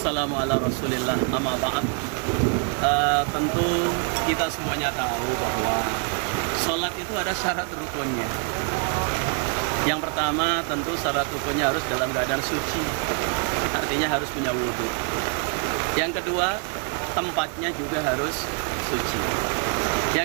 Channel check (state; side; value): quieter; left; 38.4 dB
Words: ala rasulillah, amma ba'd. Tentu kita semuanya tahu bahwa sholat itu ada syarat rukunnya. Yang pertama tentu syarat rukunnya harus dalam keadaan suci, artinya harus punya wudhu. Yang kedua, tempatnya juga harus suci.